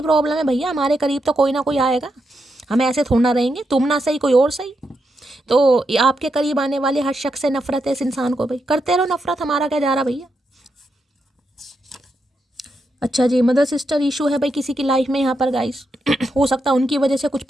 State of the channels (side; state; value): both; normal; correlation 0.83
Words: प्रॉब्लम है भैया, हमारे करीब तो कोई ना कोई आएगा, हम ऐसे थोड़ा ना रहेंगे, तुम ना सही कोई और सही। तो आपके करीब आने वाले हर शख्स से नफरत है इस इंसान को, भाई करते रहो नफरत, हमारा क्या जा रहा भैया। अच्छा जी, मदर सिस्टर इशू है भाई किसी की लाइफ में यहाँ पर गाइस। हो सकता है उनकी वजह से कुछ